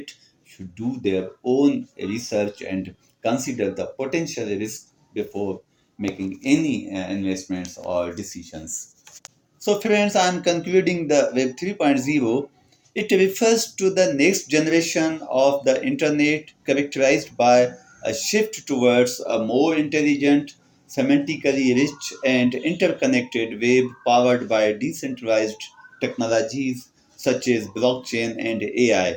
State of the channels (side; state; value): both; identical; correlation 1.00